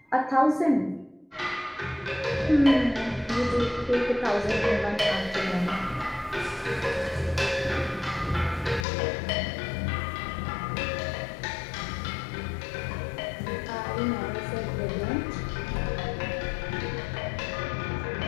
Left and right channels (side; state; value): right; drops out; at 8.8 s